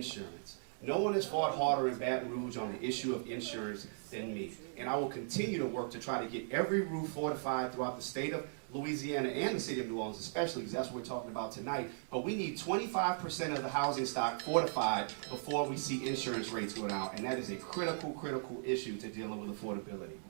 No one has fought harder in Baton Rouge on the issue of insurance than me. And I will continue to work to try to get every roof fortified throughout the state of Louisiana and the city of New Orleans especially, because that's what we're talking about tonight. But we need 25% of the housing stock fortified before we see insurance rates go down. And that is a critical, critical issue to dealing with affordability.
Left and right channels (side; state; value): left; silent; digital silence